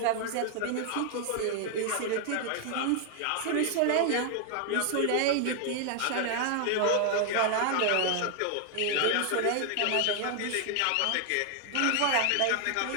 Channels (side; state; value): both; different; correlation 0.00